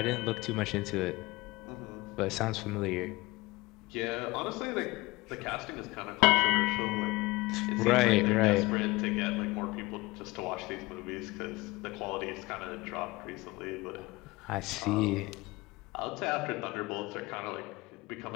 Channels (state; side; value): quieter; right; 22.0 dB